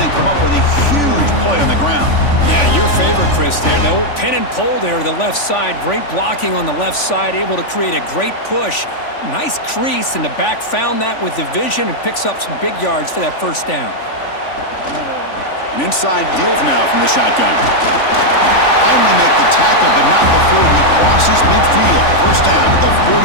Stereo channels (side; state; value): right; late; 3.5 ms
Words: come up with a huge play on the ground. Yeah, your favorite, Chris, there. The old pin and pull there to the left side. Great blocking on the left side, able to create a great push. Nice crease, and the back found that with the vision and picks up some big yards for that first down. An inside deal now from the shotgun. Finally make the tackle, but not before he crosses midfield. First down at the